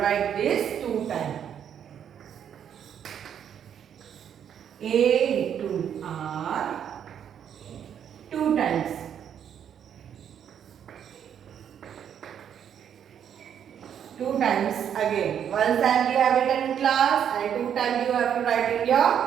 this 2 times. A to R 2 times. 2 times again. One time we have it in class and 2 times you have to write in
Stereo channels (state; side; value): quieter; left; 8.8 dB